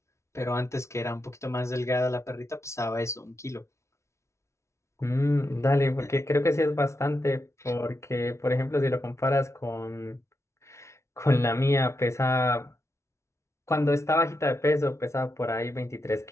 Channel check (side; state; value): right; late; 0.13 ms